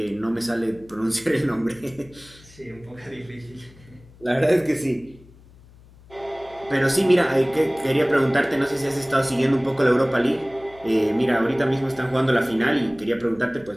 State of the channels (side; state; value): left; noise; hum, 24 dB below the sound